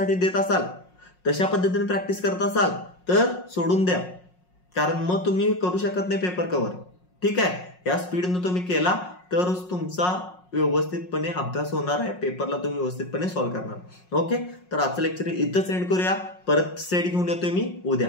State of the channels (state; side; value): late; right; 5.5 ms